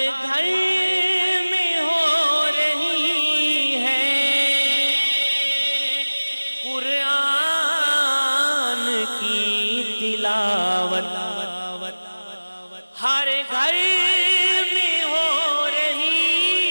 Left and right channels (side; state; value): both; inverted; correlation -1.00